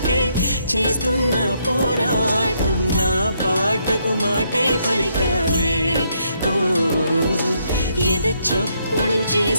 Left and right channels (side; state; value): both; inverted; correlation -0.74